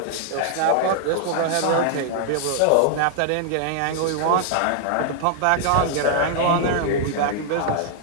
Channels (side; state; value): both; different; correlation -0.01